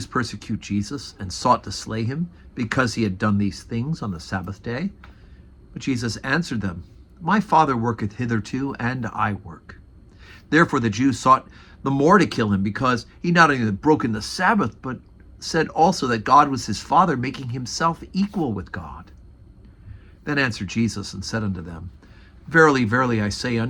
persecute Jesus and sought to slay him because he had done these things on the Sabbath day. But Jesus answered them, My Father worketh hitherto, and I work. Therefore the Jews sought the more to kill him, because he not only had broken the Sabbath, but said also that God was his Father, making himself equal with God. Then answered Jesus and said unto them, Verily, verily, I say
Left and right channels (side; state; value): both; identical; correlation 1.00